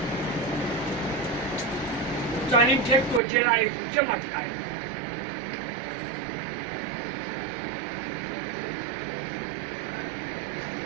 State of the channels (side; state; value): left; drops out; at 3.2 s